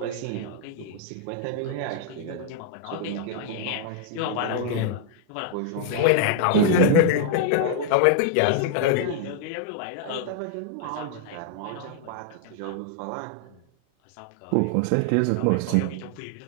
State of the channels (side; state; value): both; different; correlation 0.00